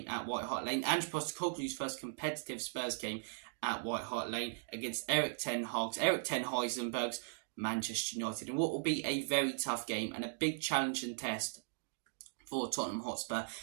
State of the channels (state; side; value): silent; left; digital silence